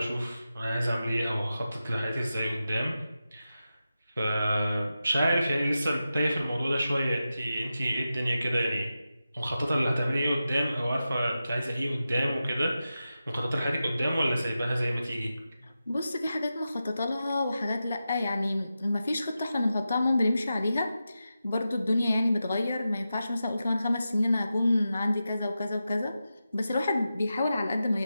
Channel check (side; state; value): both; inverted; correlation -0.91